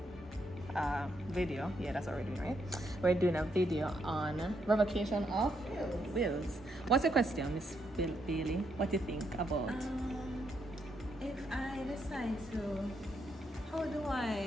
video. Yeah, that's already right. We're doing a video on revocation of wills. What's the question, Miss Bailey? What do you think about? If I decide to, how do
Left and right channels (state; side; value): normal; both; correlation 0.77